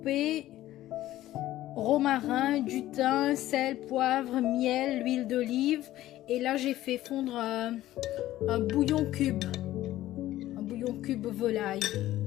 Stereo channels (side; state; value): right; quieter; 14.7 dB